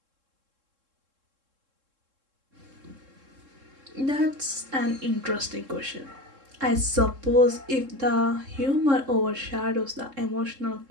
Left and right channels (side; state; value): left; late; 3.7 ms